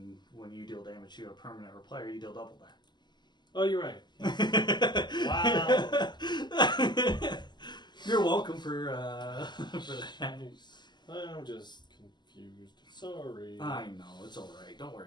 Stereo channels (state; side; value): late; right; 0.21 ms